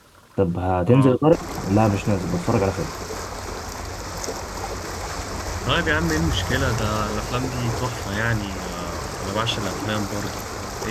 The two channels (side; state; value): both; identical; correlation 1.00